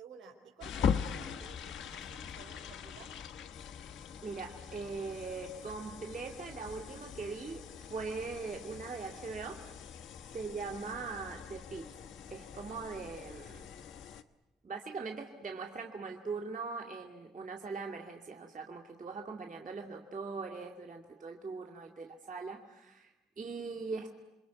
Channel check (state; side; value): normal; both; correlation 0.56